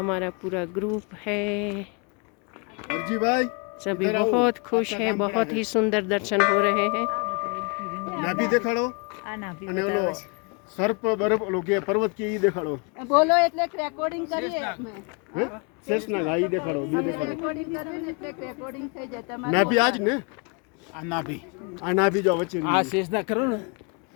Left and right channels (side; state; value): right; quieter; 33.5 dB